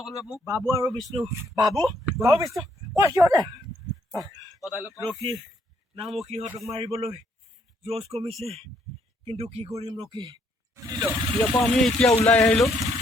বাবু আৰু বিষ্ণু, বাবু বিষ্ণু সিহঁতে ৰখি নামো সিহঁতক মাৰিবলৈ জোচ কমিছে, কিন্তু কি কৰিম ৰখি। ইয়াৰ পৰা আমি এতিয়া ওলাই আহিলোঁ।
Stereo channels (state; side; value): normal; both; correlation 0.70